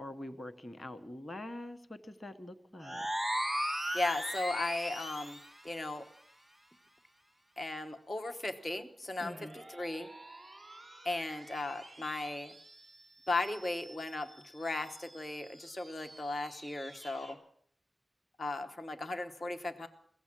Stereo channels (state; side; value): normal; both; correlation 0.92